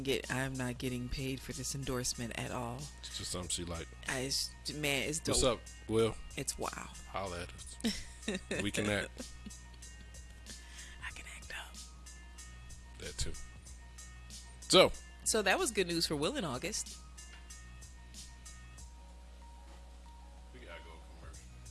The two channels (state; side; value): identical; both; correlation 1.00